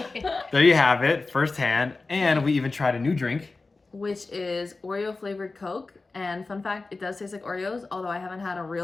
There you have it, firsthand. And we even tried a new drink. Which is Oreo flavored Coke. And fun fact, it does taste like Oreos, although I haven't had a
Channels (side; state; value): right; quieter; 3.6 dB